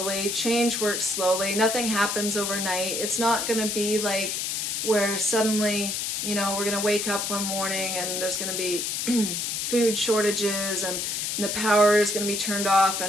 change works slowly, nothing happens overnight. It's not going to be like where suddenly, we're going to wake up one morning and there's going to be food shortages and the power is going to be turned off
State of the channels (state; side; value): noise; left; hiss, 1 dB below the sound